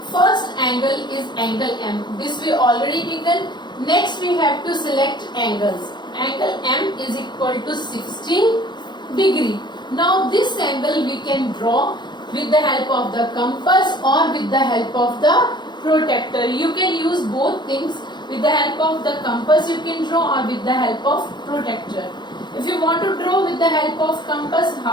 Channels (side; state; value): right; late; 0.21 ms